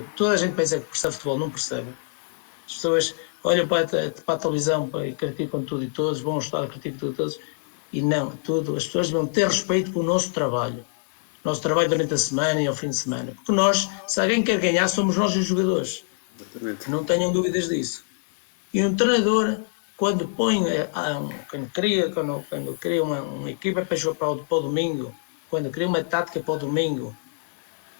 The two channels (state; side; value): silent; right; digital silence